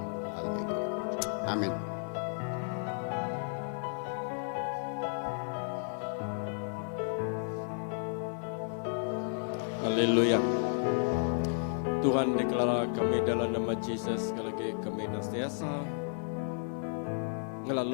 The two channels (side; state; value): right; silent; 56 dB below the other